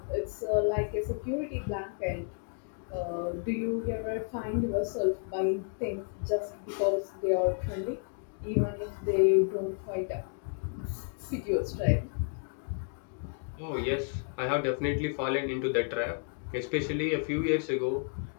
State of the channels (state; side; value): silent; right; 56 dB below the other